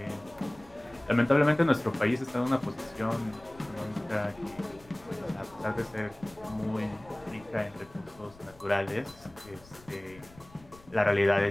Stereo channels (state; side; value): noise; left; rumble, 24 dB below the sound